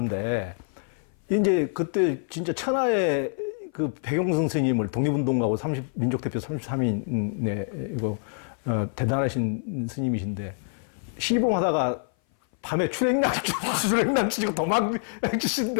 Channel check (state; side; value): silent; right; 57 dB below the other